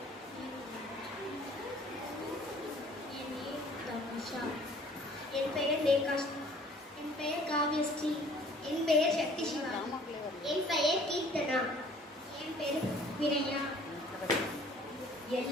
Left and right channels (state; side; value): normal; both; correlation 0.54